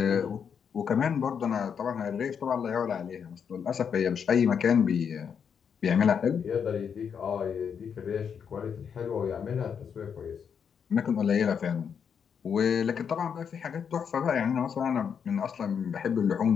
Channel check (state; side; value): quieter; right; 7.1 dB